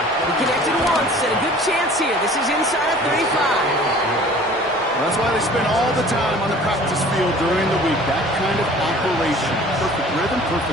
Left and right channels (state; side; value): normal; both; correlation 0.48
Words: connected once, and a good chance here. This is inside of 35. That's why they spend all the time on the practice field during the week. That kind of operation. Perfect rhythm,